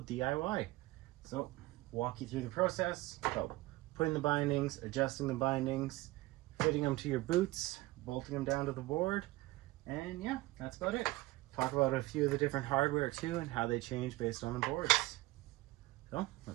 DIY. So, walk you through the process. So, putting the bindings, adjusting the bindings, fitting them to your boots, bolting them down to the board, and yeah, that's about it. Talk about a few of the different hardware too and how they change based on the boards. So,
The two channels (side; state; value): left; quieter; 19.5 dB